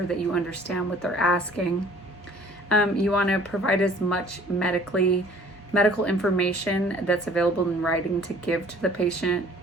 that you understand what they're asking. You want to provide as much medical information that's available in writing to give to the patient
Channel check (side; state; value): both; normal; correlation 0.52